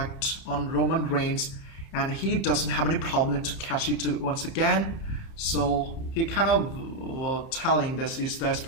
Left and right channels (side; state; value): right; late; 30 ms